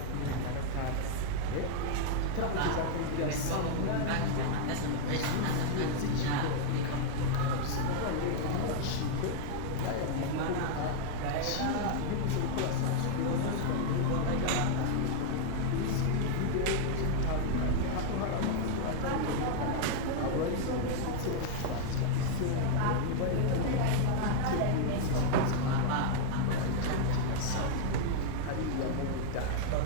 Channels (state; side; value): different; both; correlation 0.00